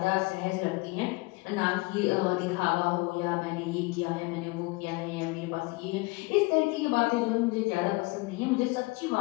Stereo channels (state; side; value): quieter; right; 25.1 dB